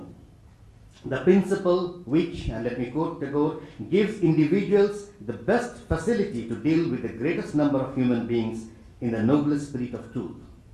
the principle which, and let me quote Tagore, gives individuals the best facility to deal with the greatest number of human beings in the noblest spirit of truth,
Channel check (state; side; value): identical; both; correlation 1.00